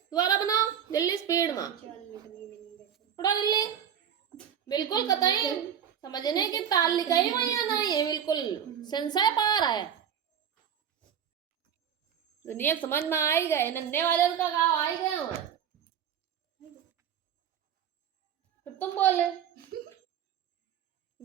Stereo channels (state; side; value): quieter; left; 8.8 dB